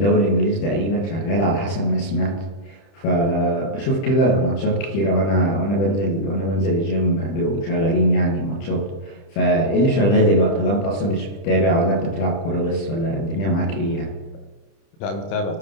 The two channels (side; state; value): right; late; 30 ms